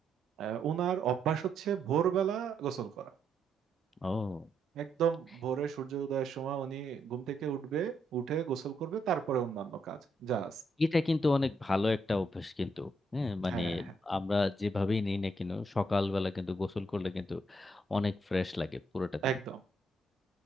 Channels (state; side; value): normal; both; correlation 0.76